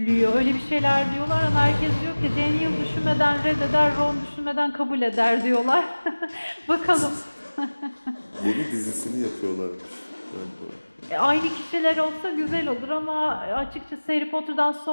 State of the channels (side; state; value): both; inverted; correlation -1.00